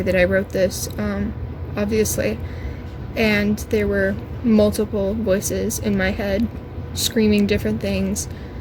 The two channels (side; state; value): both; identical; correlation 1.00